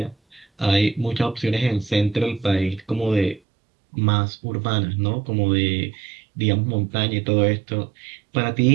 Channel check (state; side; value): drops out; left; at 3.4 s